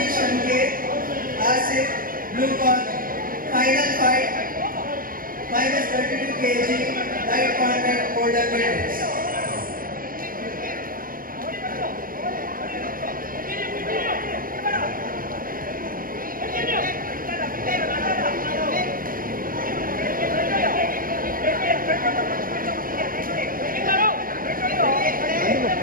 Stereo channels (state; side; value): late; left; 0.41 ms